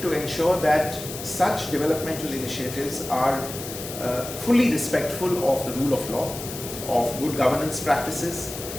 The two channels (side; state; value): left; noise; hiss, 10 dB below the sound